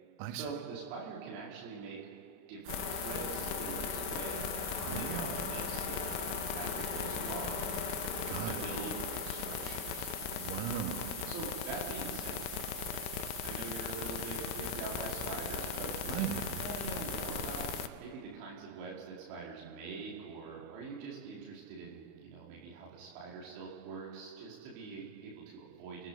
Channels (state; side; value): late; left; 34 ms